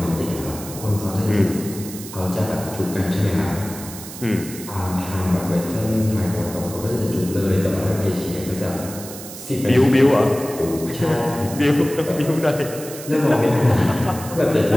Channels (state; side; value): noise; right; hiss, 13 dB below the sound